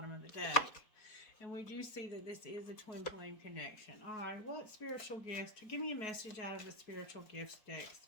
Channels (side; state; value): right; late; 4.7 ms